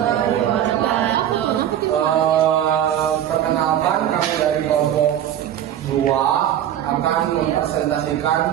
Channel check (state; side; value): quieter; left; 10.9 dB